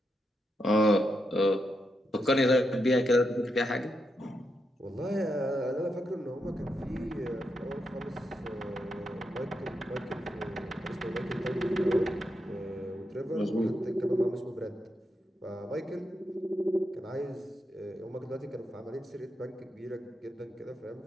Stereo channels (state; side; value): normal; both; correlation 0.84